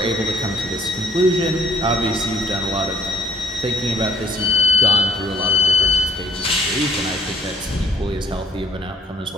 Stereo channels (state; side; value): normal; both; correlation 0.62